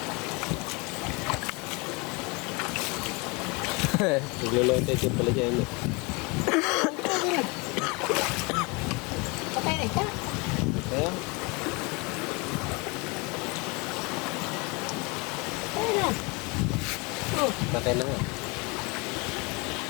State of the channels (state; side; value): quieter; right; 28.3 dB